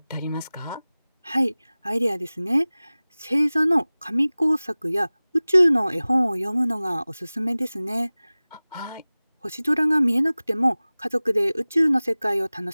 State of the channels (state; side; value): inverted; both; correlation -0.99